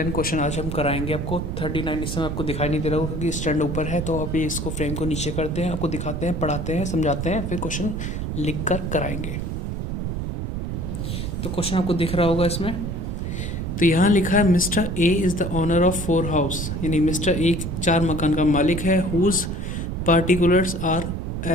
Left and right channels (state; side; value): noise; right; rumble, 3 dB below the sound